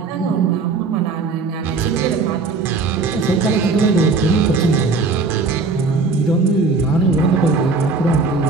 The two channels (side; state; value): left; quieter; 4.2 dB